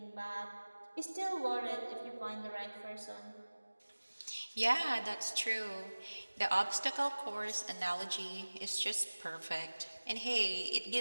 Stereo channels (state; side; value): inverted; both; correlation -1.00